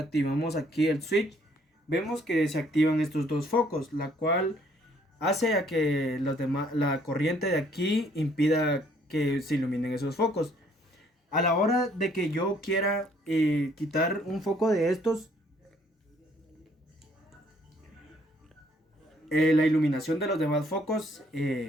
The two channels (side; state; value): both; normal; correlation 0.63